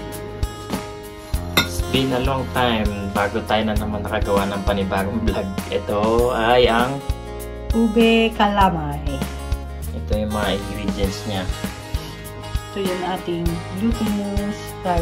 It's been a long time bago tayo na naman nakagawa ng panibagong vlog. Ito ay ang Ube calamay. ito yung mga ingredients niya. Ito yung ating glutinous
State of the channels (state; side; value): identical; both; correlation 1.00